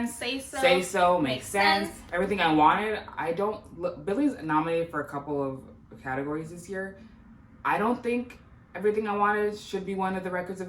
Say So, makes sense. Everything I Wanted. Billy's nominated for a couple of categories this year. I don't think Everything I Wanted should be one of the records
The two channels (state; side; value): identical; both; correlation 1.00